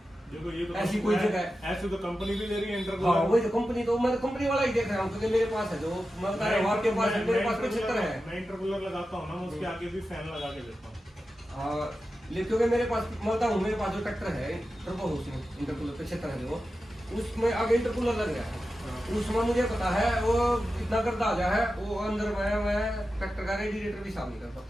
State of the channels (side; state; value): both; normal; correlation 0.92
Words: देखो ये तो ऐसी कोई जगह है, ऐसे तो कंपनी भी दे रही है इंटरकूलर। हाँ, वही तो कंपनी, तो मैं कंपनी वाला ही देख रहा हूँ, क्योंकि मेरे पास है जो मैं बता रहा हूँ, आपके पास मेरे पास 75 है। मैं इंटरकूलर लगाता हूँ ना, उसके आगे भी फैन लगा के देता हूँ। क्योंकि मेरे पास मैं बताऊँ, मेरे पास जो ट्रैक्टर है टर्बो उसमें इंटरकूलर 75 है, जो उसमें आगे इंटरकूलर लग रहा है, उसमें मुझे पता है वो इतना गर्दा आ गया है, वो अंदर मैं ट्रैक्टर का रेडिएटर भी साफ नहीं कर